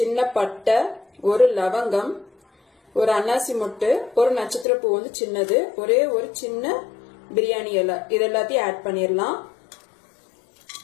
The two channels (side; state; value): right; drops out; at 4.7 s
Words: பட்டை, ஒரு லவங்கம், ஒரு அன்னாசி மொட்டு, ஒரு நட்சத்திர பூ வந்து சின்னது, ஒரே ஒரு சின்ன பிரியாணி இலை, இது எல்லாத்தையும் ஆட் பண்ணிடலாம்.